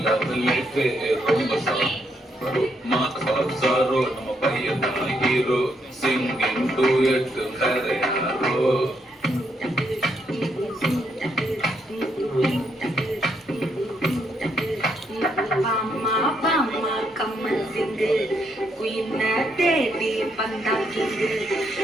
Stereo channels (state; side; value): normal; both; correlation 0.76